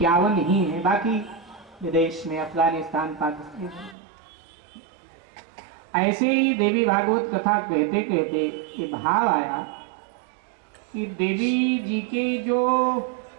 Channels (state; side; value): drops out; left; at 4.0 s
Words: ही है। बाकी विदेश में अफगानिस्तान, पाकिस्तान। ऐसे ही देवी भागवत कथा कहते कहते ये भाव आया कि देवी जी के जो